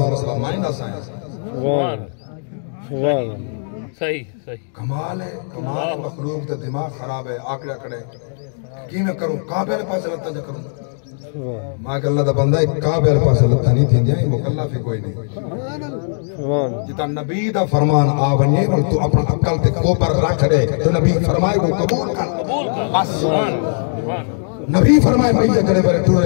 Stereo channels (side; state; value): right; silent; digital silence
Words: مسئلہ مائنہ سائنس سبحان اللہ صحیح صحیح کمال ہے مخلوق تے دماغ خراب ہے آکڑا کڑے کی میں کروں کعبے والے پاس لتا جا کروں ماں کہ اللہ دا بندہ ایک کعبے والے پاس لتا نہیں تھی جائیں مکلف ہی کوئی نہیں جتا نبی دا فرمان آونیے اور تو اپنا عقل تے کوپر رکھ دے تو نبی فرمائے کو قبول کر بس نبی فرمائے بھئی کرے برے